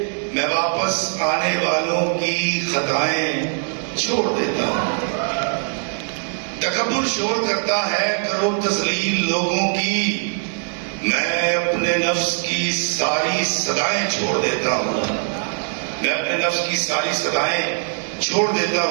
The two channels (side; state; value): left; silent; 65 dB below the other